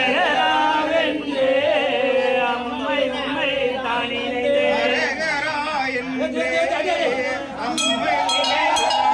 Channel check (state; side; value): identical; both; correlation 1.00